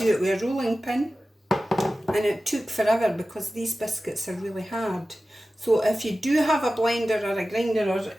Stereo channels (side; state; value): both; normal; correlation 0.95